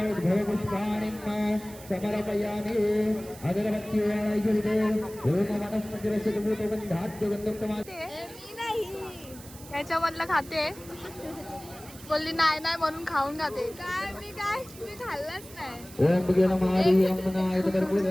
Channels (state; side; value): noise; right; hiss, 18 dB below the sound